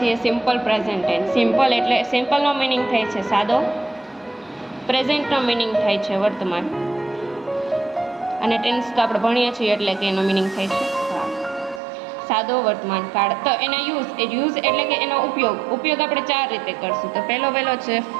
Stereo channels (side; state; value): left; drops out; at 11.8 s